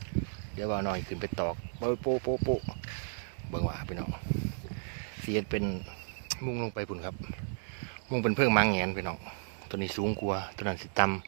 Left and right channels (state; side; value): silent; left; digital silence